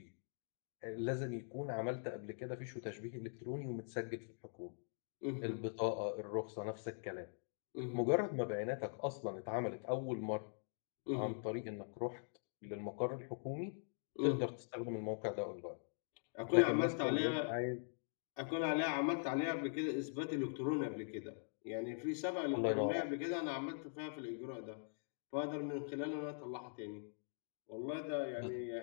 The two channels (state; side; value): silent; right; digital silence